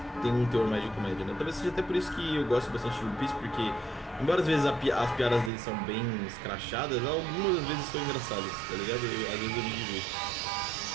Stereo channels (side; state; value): left; drops out; at 5.5 s